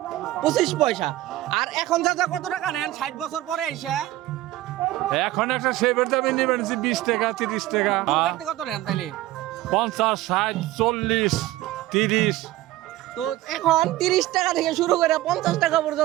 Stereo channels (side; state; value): left; quieter; 16.0 dB